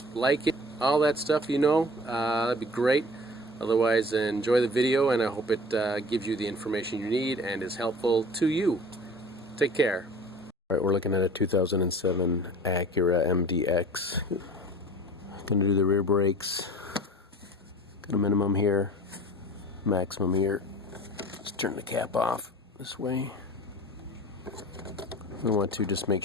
like it, all that stuff, that'd be great. Otherwise, enjoy the video, and I hope it gives you the information you need and is helpful to you. Take care. Alright, we're looking at a 2007 Acura RDX. Gonna do the rear brakes. Got a minimum here, maximum here. Let's turn the cap off this way. We want to just make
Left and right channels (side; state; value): both; normal; correlation 0.43